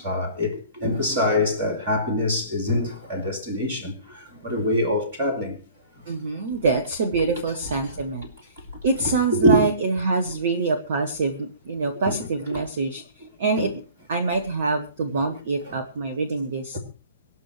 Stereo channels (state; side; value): inverted; both; correlation -0.49